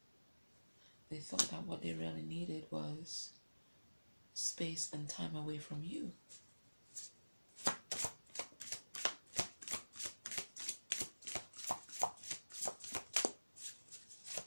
They thought that what they really needed was space and time away from you.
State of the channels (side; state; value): both; inverted; correlation -1.00